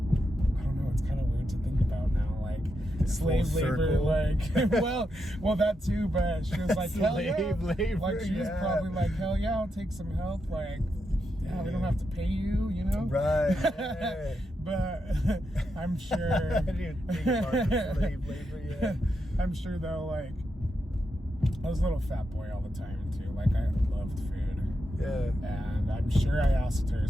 don't know, it's kind of weird to think about now, like slave labor, like well that too, but she was like hell yeah, labor, like she was probably like hell yeah, I'll take some help, like yeah, we don't have to pay you, you know, right? Yeah. But I'm sure I didn't think about the slave labor. Yeah, I'm sure though, like I was a little fat boy all the time too. Like I loved food. Yeah. And I'm sure I asked her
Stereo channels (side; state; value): both; normal; correlation 0.84